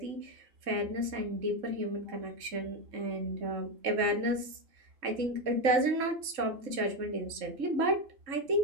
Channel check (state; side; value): late; left; 3.6 ms